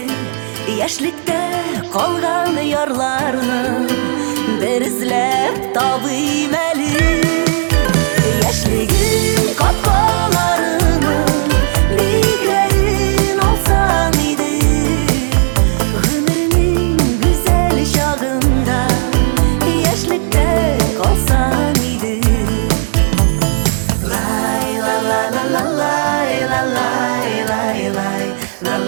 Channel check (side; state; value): left; silent; digital silence